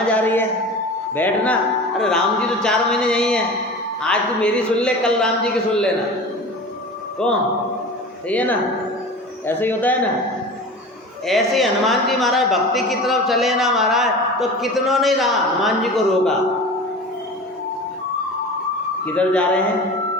जा रही है, बैठना। अरे राम जी तो 4 महीने यहीं हैं, आज तू मेरी सुन ले, कल राम जी की सुन लेना। कौन? सही है ना, ऐसे ही होता है ना। ऐसे हनुमान जी महाराज भक्ति की तरफ चले ना महाराज, तो कितनों ने हनुमान जी को रोका। किधर जा रहे हैं,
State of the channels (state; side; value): normal; both; correlation 0.35